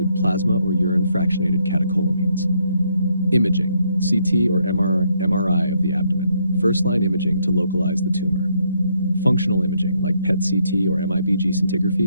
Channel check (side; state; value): both; inverted; correlation -0.73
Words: plasma or urine fractionated catecholamines. Imaging, CT or MRI of the abdomen, first-line imaging to localize the tumor. Functional imaging like PET-CT or MIBG